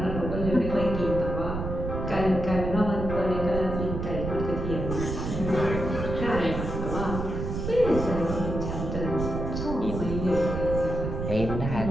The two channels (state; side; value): noise; right; rumble, 4 dB below the sound